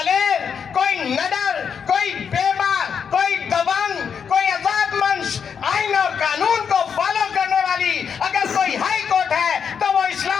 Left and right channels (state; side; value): quieter; right; 7.0 dB